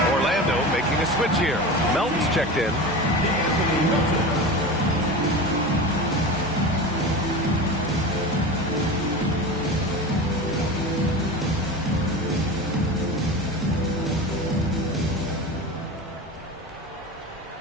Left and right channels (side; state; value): both; normal; correlation 0.28